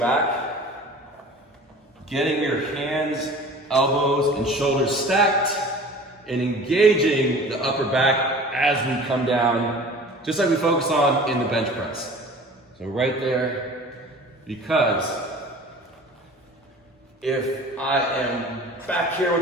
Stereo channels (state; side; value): normal; both; correlation 0.42